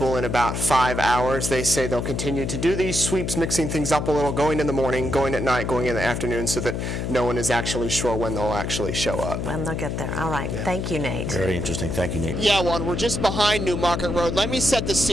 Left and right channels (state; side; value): noise; left; hum, 3 dB below the sound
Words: in about 5 hours. They say they'll continue to do these sweeps, mixing things up a little, going in the morning, going at night, going in the afternoon, so that no one is actually sure when they'll actually show up. When they'll get there. All right. Yeah. Thank you, Nate. Very interesting. Thank you, Nate. Yeah, Juan, we're just behind New Market Road. Let me set the